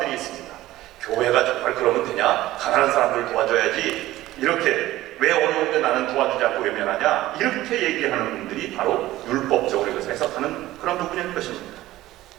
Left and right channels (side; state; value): left; quieter; 15.9 dB